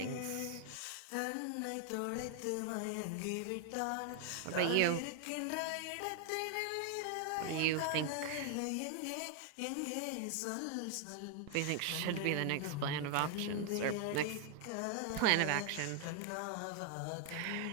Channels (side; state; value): both; different; correlation 0.00